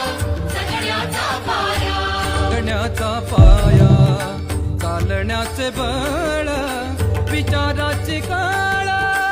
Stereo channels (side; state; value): both; identical; correlation 1.00